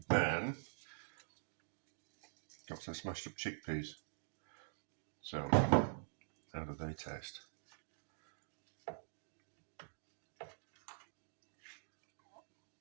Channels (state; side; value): silent; left; digital silence